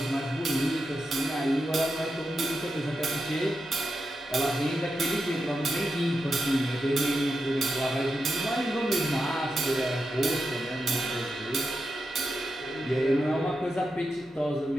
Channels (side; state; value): both; normal; correlation 0.87